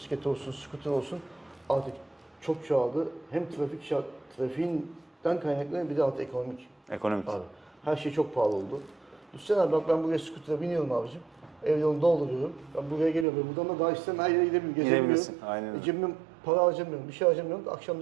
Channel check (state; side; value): drops out; left; at 13.2 s